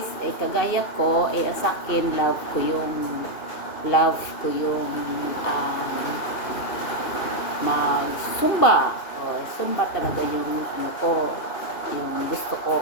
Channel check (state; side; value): late; right; 2.8 ms